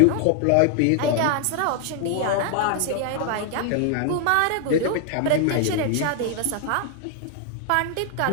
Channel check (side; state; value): both; different; correlation 0.00